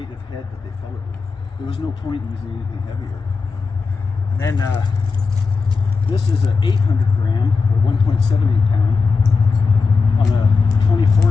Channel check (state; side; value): quieter; right; 4.7 dB